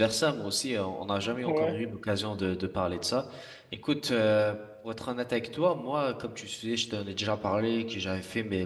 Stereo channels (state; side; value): identical; both; correlation 1.00